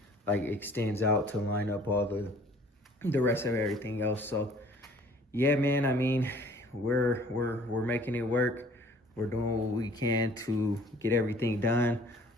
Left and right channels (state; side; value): normal; both; correlation 0.54